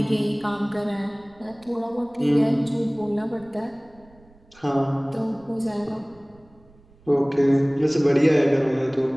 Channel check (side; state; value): right; noise; rumble, 28 dB below the sound